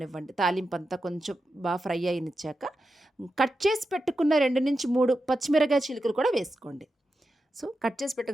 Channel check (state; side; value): normal; both; correlation 0.89